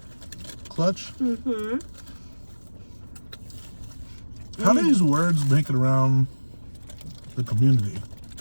Clutch. How do these words make it around the community?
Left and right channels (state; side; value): inverted; both; correlation -1.00